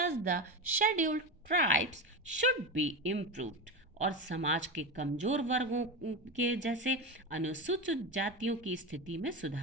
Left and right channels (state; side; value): normal; both; correlation 0.19